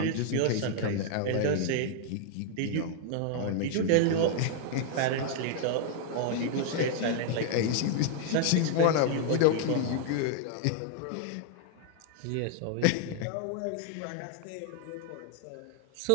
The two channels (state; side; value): different; both; correlation 0.00